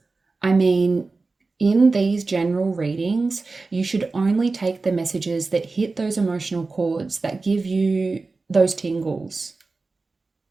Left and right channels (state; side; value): quieter; left; 3.8 dB